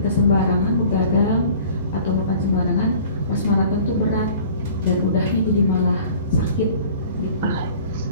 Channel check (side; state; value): both; inverted; correlation -0.48